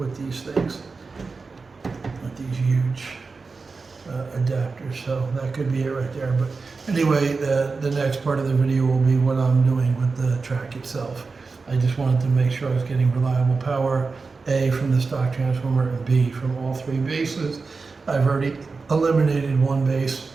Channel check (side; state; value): left; quieter; 4.3 dB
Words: these things, with these huge adapters. So that could be it right there. But anyway, the next part of the video will be what I'm doing with the track itself. I just wanted to make sure I was getting reliable power, A, from the stock transformer, and B, from all three bases. I've already eliminated one base.